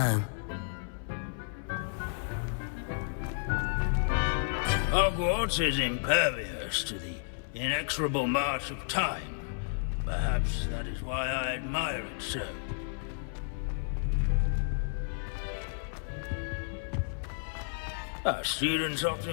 Hogwarts is impervious to the inexorable march of time. Perhaps that is why I admire it so. Our students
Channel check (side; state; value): right; silent; 55 dB below the other